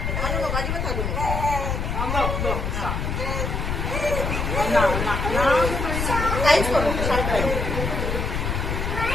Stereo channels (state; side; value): noise; left; rumble, 1 dB below the sound